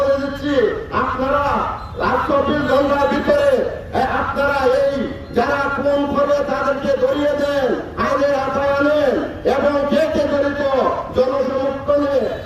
দিচ্ছি, আপনারা 24 ঘন্টার ভিতরে আপনারা এই যারা খুন করবে তাদেরকে ধরিয়ে দেন, আইনের আওতায় আনেন এবং কে কে জড়িত জনসমর্থনে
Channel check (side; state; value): both; identical; correlation 1.00